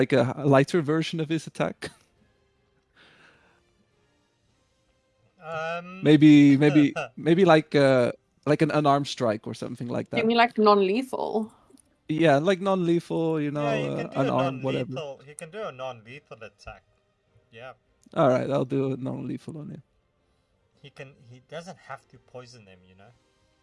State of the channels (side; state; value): both; identical; correlation 1.00